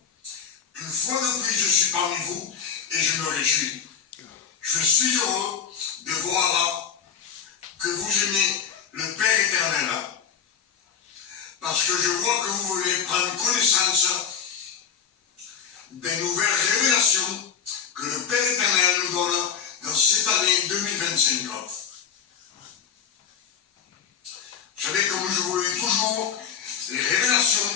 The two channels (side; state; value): right; quieter; 7.2 dB